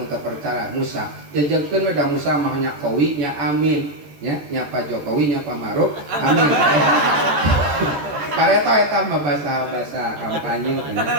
untuk percaya Musa. Jejengkeun da Musa mah nya qawi nya amin. Nya Pak Jokowi nya Pak Maruf amin. Pareto eta mah bahasa kampanye.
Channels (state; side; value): late; left; 13 ms